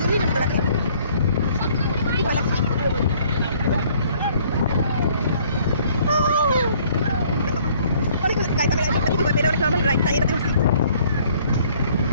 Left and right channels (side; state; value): both; inverted; correlation -0.60